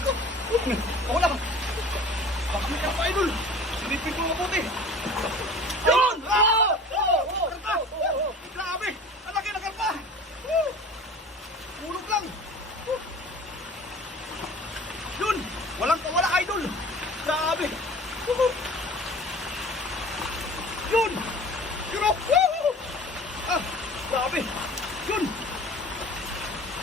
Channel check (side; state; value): both; normal; correlation 0.42